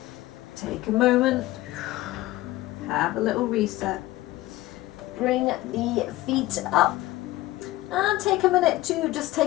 Take a moment. Have a little reset. Bring the feet up. And take a minute to just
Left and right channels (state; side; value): quieter; right; 17.3 dB